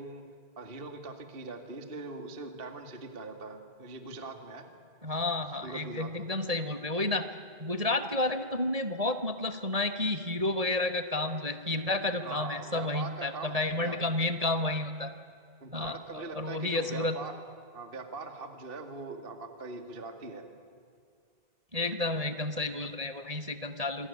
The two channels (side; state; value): left; late; 1.8 ms